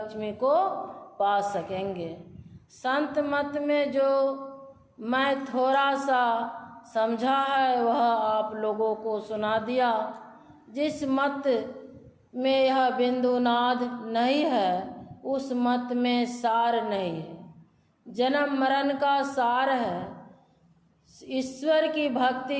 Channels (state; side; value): identical; both; correlation 1.00